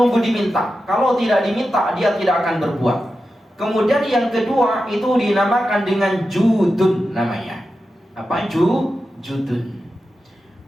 diminta. Kalau tidak diminta dia tidak akan berbuat. Kemudian yang kedua itu dinamakan dengan judun namanya. Apa judun?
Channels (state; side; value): normal; both; correlation 0.91